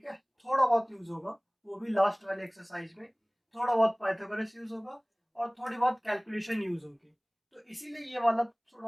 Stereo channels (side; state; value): both; identical; correlation 1.00